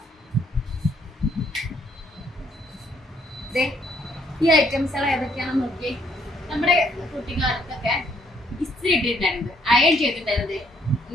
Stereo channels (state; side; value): normal; both; correlation 0.68